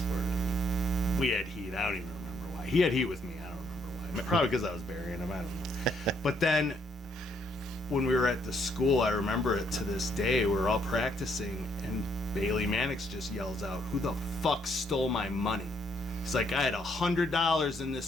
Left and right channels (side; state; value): both; normal; correlation 0.71